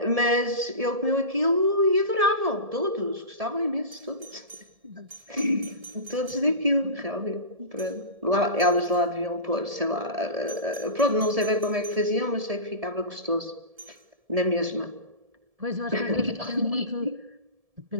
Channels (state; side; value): late; left; 1.7 ms